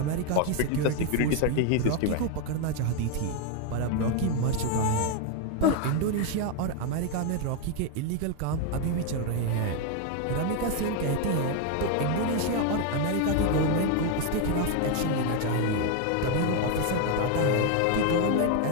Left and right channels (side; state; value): both; different; correlation 0.01